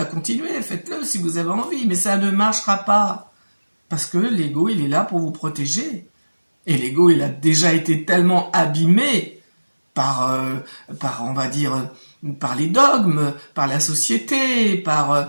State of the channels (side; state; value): both; inverted; correlation -1.00